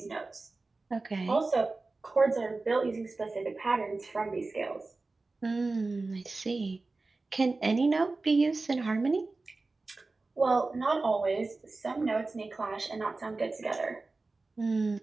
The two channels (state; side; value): quieter; left; 3.5 dB